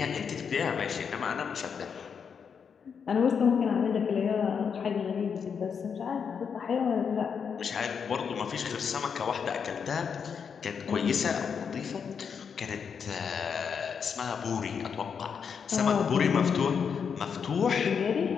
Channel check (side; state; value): right; quieter; 6.6 dB